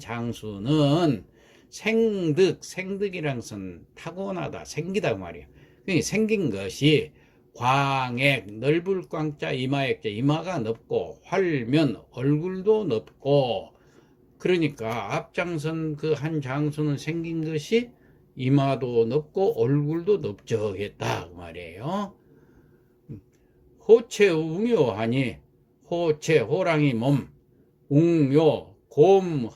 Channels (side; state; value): both; identical; correlation 1.00